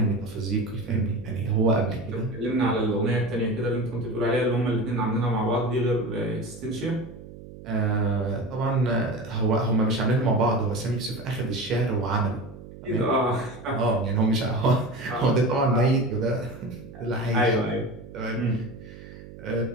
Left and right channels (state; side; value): noise; right; hum, 16 dB below the sound